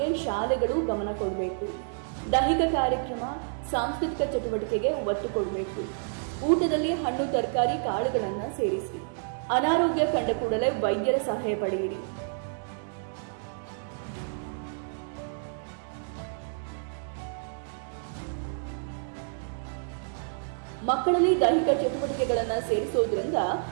ಶಾಲೆಗಳು ಗಮನ ಕೊಡಬೇಕು. ದೈಹಿಕ ಕಾರ್ಯಕ್ರಮ, ಸಾಂಸ್ಕೃತಿಕ ಚಟುವಟಿಕೆಗೆ ಒತ್ತು ಕೊಡಬೇಕು. ಊಟದಲ್ಲಿ ಹಣ್ಣು, ತರಕಾರಿ, ಕಾಳುಗಳನ್ನ ಸೇರಿಸಿ. ಅನಾರೋಗ್ಯ ಕಂಡ ಕೂಡಲೇ ವೈದ್ಯರ ಸಲಹೆ ಪಡೆಯಿರಿ. ಮಕ್ಕಳಲ್ಲಿ ದೈಹಿಕ ಚಟುವಟಿಕೆಗಳನ್ನ ಸೇರಿಸೋದ್ರಿಂದ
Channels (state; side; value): silent; left; digital silence